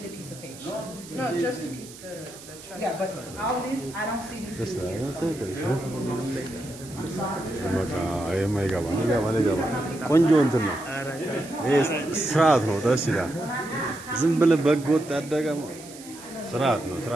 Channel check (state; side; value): noise; right; hiss, 17 dB below the sound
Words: a piece of paper. No, just the trust. Yeah, but all this, I don't see these Just people that. here. That's it. በቃ የማይገባ ይገባ ቆንጆ እንትን ነው። ይሄ ስርዓት ነው። ደስ ይላል። ዝም ብለህ በግ ወጥ ያደገ ስርዓት ነው።